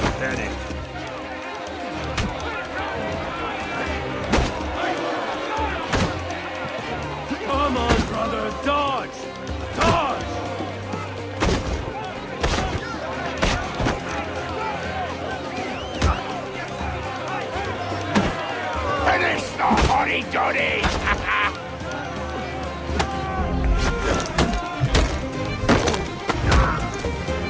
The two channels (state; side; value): identical; both; correlation 1.00